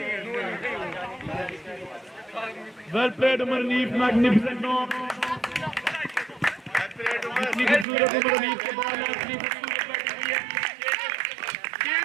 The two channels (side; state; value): left; drops out; at 7.9 s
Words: well played Umar Hanif magnificent knock इतनी खूबसूरत उमर अनीफ के ball है इतनी खूबसूरत बैटिंग हुई है Kane